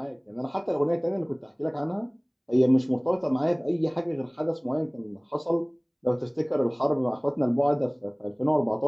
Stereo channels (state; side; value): identical; both; correlation 1.00